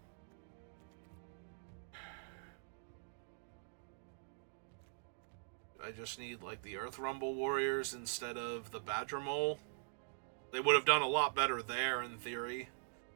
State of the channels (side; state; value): left; silent; digital silence